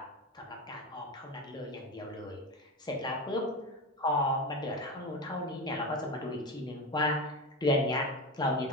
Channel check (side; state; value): both; normal; correlation 0.21